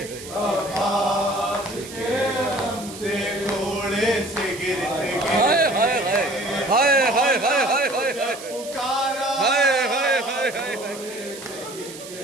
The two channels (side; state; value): right; noise; hiss, 14 dB below the sound